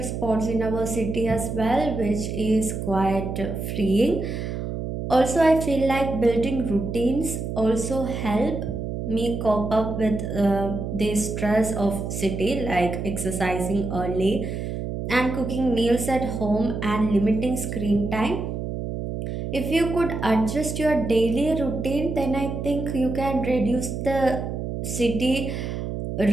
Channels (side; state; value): right; noise; hum, 4 dB below the sound